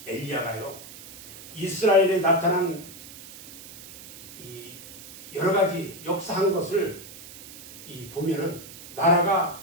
엘리야가요, 이스라엘에 나타난 이 여러 가지 역사한 것을 보면은 나라가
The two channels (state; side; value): noise; right; hiss, 16 dB below the sound